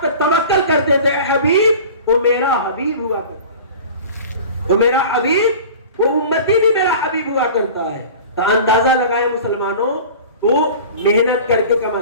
پر توکل کرتے تھے، اے حبیب وہ میرا حبیب ہوا کرتا ہے، وہ میرا حبیب، وہ امتی بھی میرا حبیب ہوا کرتا ہے. تو اندازہ لگائے مسلمانوں، تو محنت کر کے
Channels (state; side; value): inverted; both; correlation -0.39